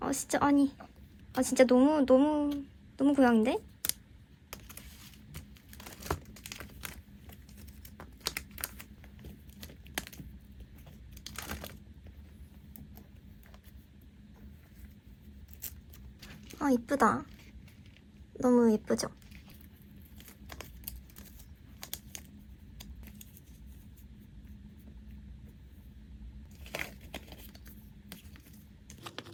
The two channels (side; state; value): both; identical; correlation 1.00